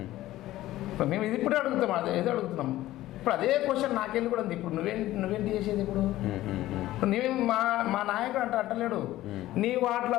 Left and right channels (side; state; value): right; quieter; 15.4 dB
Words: మేము ఇది ఇప్పుడే అడుగుతాం, ఏదో అడుగుతున్నాం. ఇప్పుడు అదే క్వశ్చన్ నాకెళ్ళి కూడా ఉంది. ఇప్పుడు నువ్వేంటి చేసేది? ఇప్పుడు నువ్వేం మా నాయకుడు అంటలేడు నీ వార్డులో